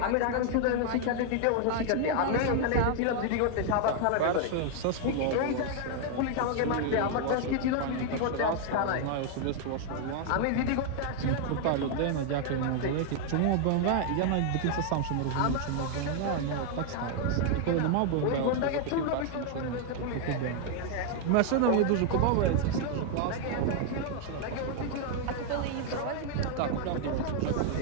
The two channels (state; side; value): different; both; correlation 0.00